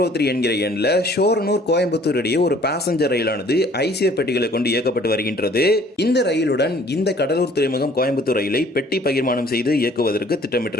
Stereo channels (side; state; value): both; normal; correlation 0.56